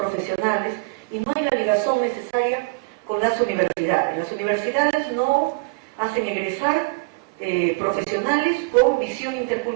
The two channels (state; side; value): quieter; left; 28.5 dB